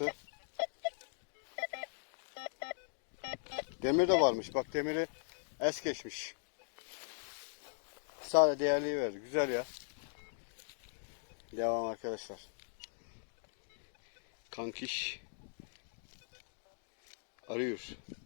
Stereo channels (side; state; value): right; silent; digital silence